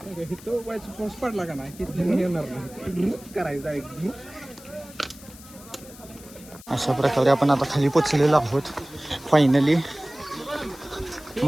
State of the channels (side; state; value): left; noise; hiss, 20 dB below the sound